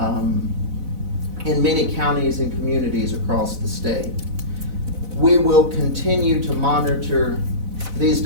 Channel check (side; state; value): left; late; 4.0 ms